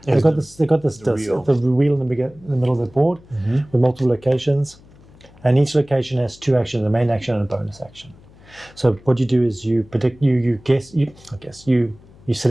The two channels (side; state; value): left; noise; hum, 25 dB below the sound